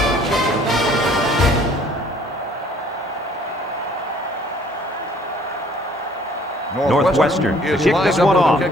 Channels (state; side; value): normal; both; correlation 0.57